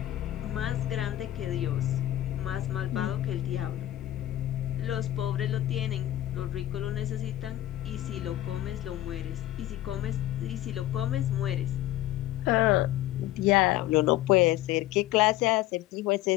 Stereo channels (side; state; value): right; quieter; 14.4 dB